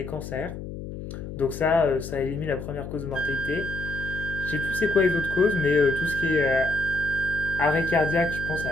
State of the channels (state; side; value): noise; left; hum, 9 dB below the sound